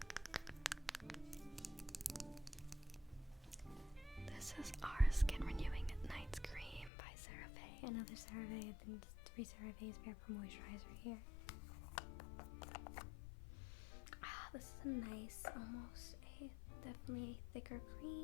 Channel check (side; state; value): right; drops out; at 6.9 s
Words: Skin Renewing Night Cream by CeraVe. Another CeraVe. I've been 3 CeraVe's Vapor Moisturizer here. This is a nice, definitely a thicker